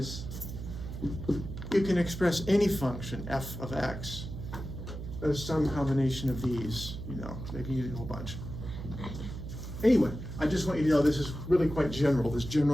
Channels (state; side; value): noise; right; hum, 8 dB below the sound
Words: you can express any function, f of x, as some combination of these, maybe you need a whole bunch. Anyway, I just want you to know this is really quite general. This